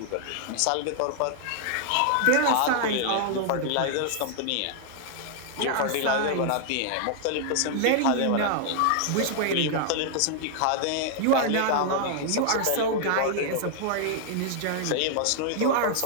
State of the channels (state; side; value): different; both; correlation 0.00